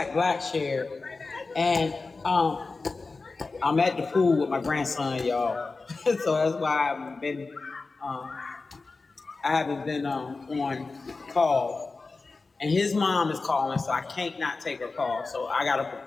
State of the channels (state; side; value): quieter; right; 3.9 dB